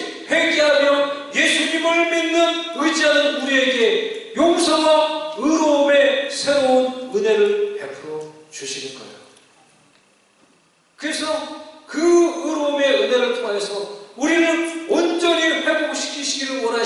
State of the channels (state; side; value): identical; both; correlation 1.00